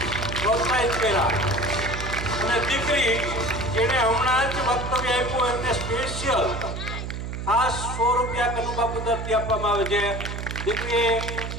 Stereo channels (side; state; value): right; noise; hum, 6 dB below the sound